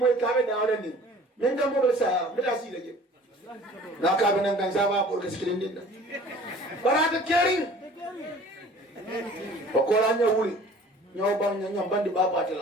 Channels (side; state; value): both; normal; correlation 0.48